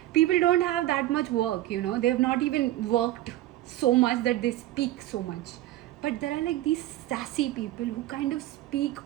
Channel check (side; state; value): left; quieter; 15.1 dB